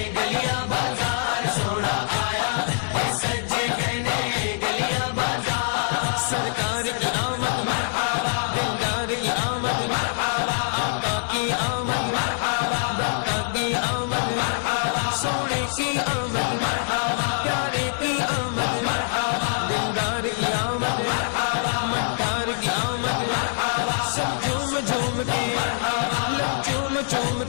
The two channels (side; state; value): right; silent; digital silence